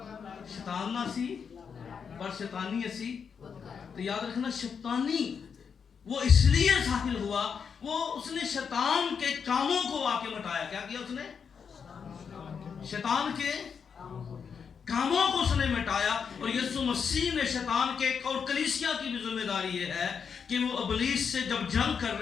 شیطان نہ اسی پر شیطانی اسی، تو یاد رکھنا شیطانی وہ اس لیے ظاہر ہوا، وہ اس نے شیطان کے کاموں کو آ کے مٹایا. کیا کیا اس نے؟ شیطان کے کاموں کو اس نے مٹایا. اور یسوع مسیح نے شیطان کے اور کلیسیا کی بھی ذمہ داری یہ ہے کہ وہ ابلیس سے جب جنگ کر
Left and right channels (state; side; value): quieter; right; 6.5 dB